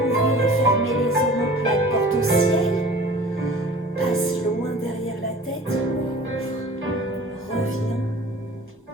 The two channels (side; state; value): both; normal; correlation 0.44